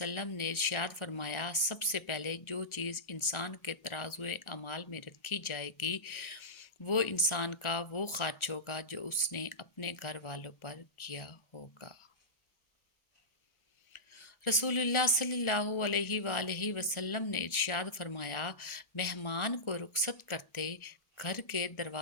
نے ارشاد فرمایا، سب سے پہلے جو چیز انسان کے ترازوئے اعمال میں رکھی جائے گی وہ انسان کا وہ خرچ ہوگا جو اس نے اپنے گھر والوں پر کیا ہوگا۔ رسول اللہ صلی اللہ علیہ وآلہ وسلم نے ارشاد فرمایا، مہمان کو رخصت کرتے گھر کے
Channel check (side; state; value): right; late; 1.4 ms